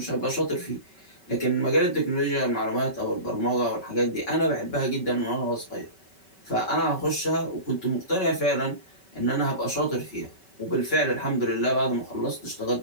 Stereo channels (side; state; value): right; late; 5.2 ms